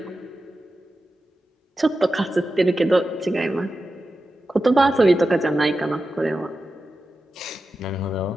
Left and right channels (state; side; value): normal; both; correlation 0.92